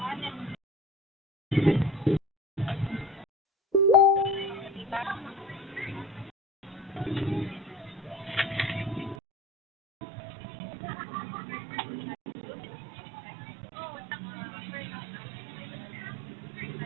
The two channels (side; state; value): left; drops out; at 9.2 s